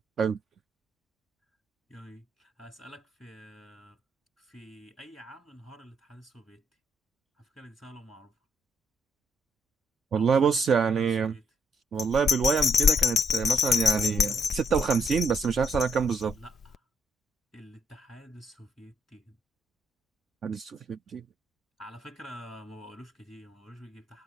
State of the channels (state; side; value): normal; both; correlation 0.73